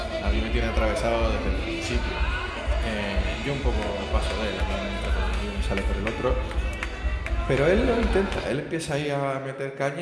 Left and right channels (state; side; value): identical; both; correlation 1.00